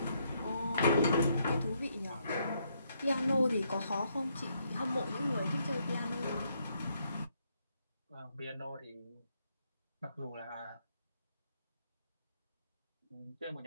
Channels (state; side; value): inverted; both; correlation -0.74